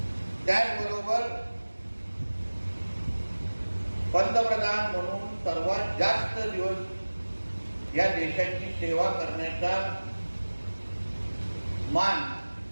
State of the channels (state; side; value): inverted; both; correlation -1.00